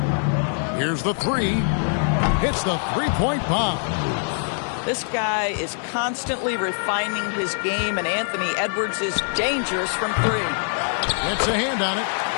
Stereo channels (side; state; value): right; silent; 62 dB below the other